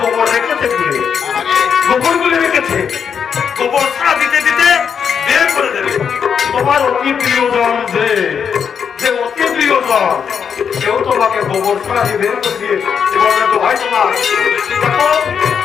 রেখেছে তুলে, গোবর গুলে রেখেছে। গোবর ছাড়া দিতে দিতে বের করে দেবে। তোমার অতি প্রিয়জন যে অতি প্রিয়জন, কেউ তোমাকে গোবর ছাড়া দিয়ে বের করে দিয়ে বলবে তো ভাই তোমার দেখো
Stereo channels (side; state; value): right; quieter; 7.1 dB